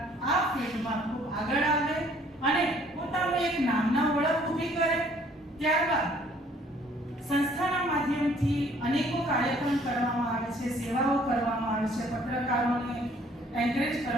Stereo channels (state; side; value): normal; both; correlation 0.59